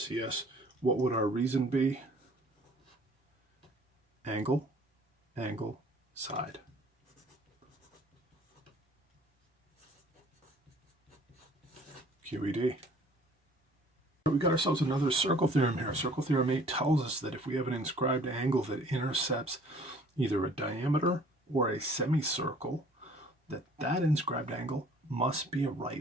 What would our reason be? Angle, angle, side. QED. We got ourselves another circle theorem here. Circle theorem 8 tells us that if we have an inscribed angle that intercepts either a diameter or a semicircle, that inscribed angle must be a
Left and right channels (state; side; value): normal; both; correlation 0.54